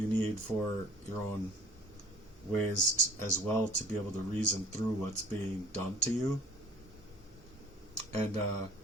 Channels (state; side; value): normal; both; correlation 0.52